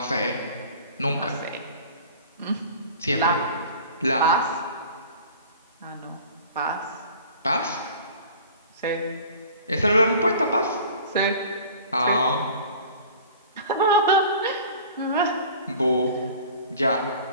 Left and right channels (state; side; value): inverted; both; correlation -0.44